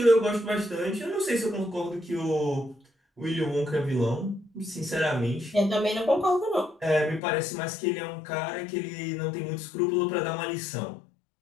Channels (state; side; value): drops out; right; at 7.2 s